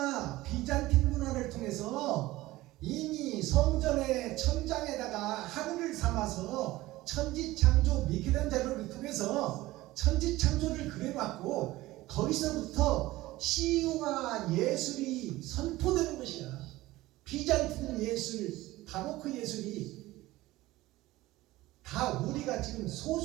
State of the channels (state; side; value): quieter; left; 17.9 dB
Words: 비잔틴 문화를 통해서 이미 성전의 천장에다가 하늘을 삼아서 천지창조 미켈란젤로를 통해서 천지창조를 그려놨고 거기서부터 시와 예술이 선포되는 것이야. 비잔틴 예술, 바로크 예술이 다 우리가 지금